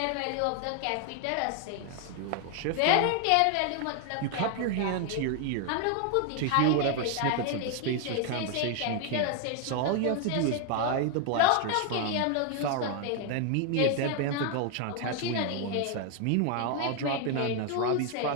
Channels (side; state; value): both; different; correlation 0.01